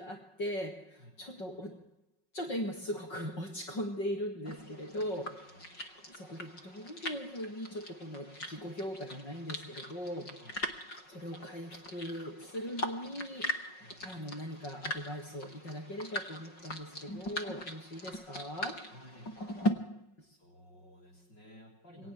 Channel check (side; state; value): right; late; 5.4 ms